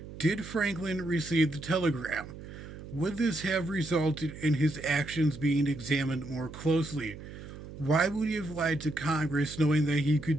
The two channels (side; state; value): right; noise; hum, 13 dB below the sound